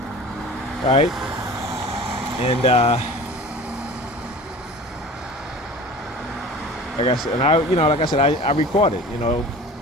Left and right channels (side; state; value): both; normal; correlation 0.40